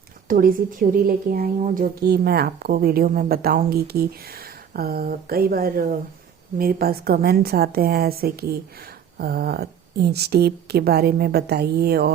थोड़ी सी थ्योरी लेके आई हूँ जो कि मैं आपको वीडियो में बताऊँगी कि कई बार मेरे पास कमेंट्स आते हैं ऐसे कि इंच टेप के बारे में बताइए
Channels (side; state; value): left; quieter; 8.2 dB